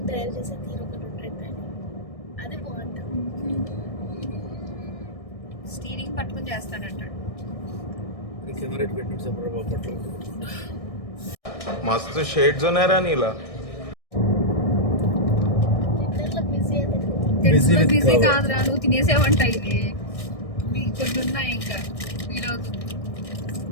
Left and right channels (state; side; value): late; right; 1.6 ms